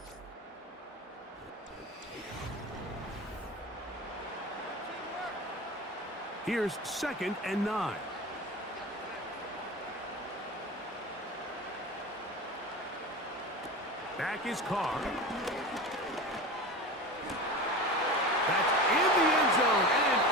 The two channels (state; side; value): normal; both; correlation 0.30